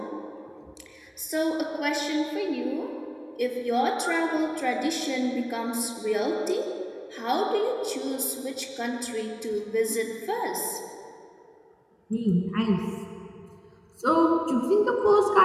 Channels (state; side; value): identical; both; correlation 1.00